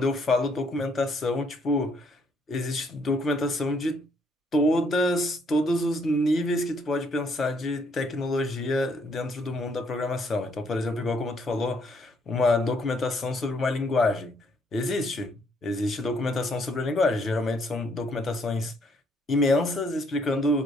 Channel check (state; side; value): normal; both; correlation 0.69